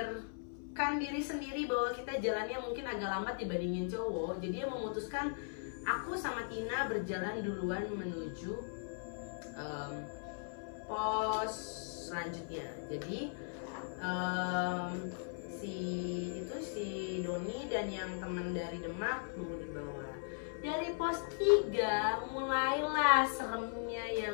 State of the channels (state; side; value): silent; right; 52 dB below the other